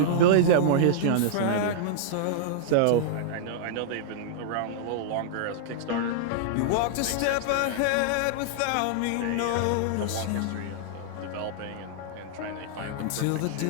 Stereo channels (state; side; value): different; both; correlation -0.01